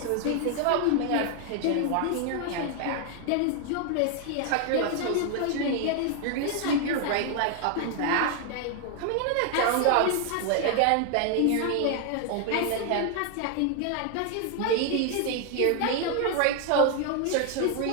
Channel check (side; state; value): both; different; correlation 0.01